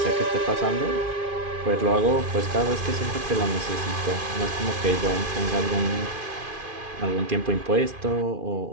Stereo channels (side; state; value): left; late; 2.5 ms